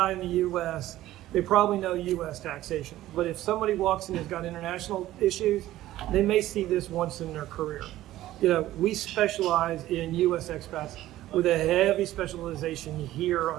in the U.S. they probably know U.S. taxation. But if somebody walks in and has got international issues, they may see this once in their career. We specialize in U.S. expats with a heavy specialization here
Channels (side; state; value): left; quieter; 14.8 dB